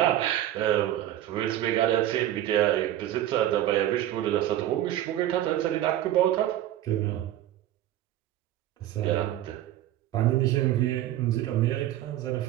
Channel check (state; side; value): quieter; left; 13.0 dB